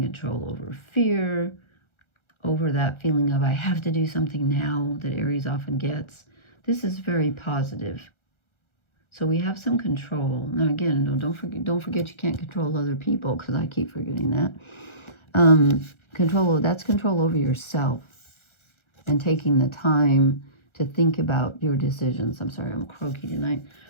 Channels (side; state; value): right; late; 1.4 ms